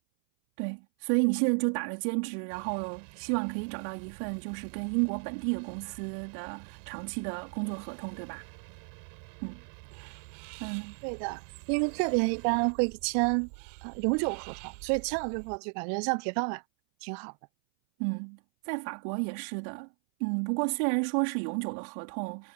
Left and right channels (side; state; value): left; silent; 56 dB below the other